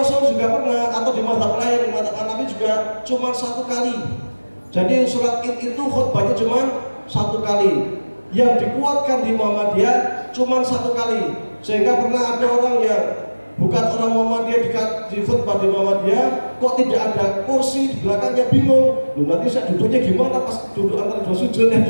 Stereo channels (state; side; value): inverted; both; correlation -1.00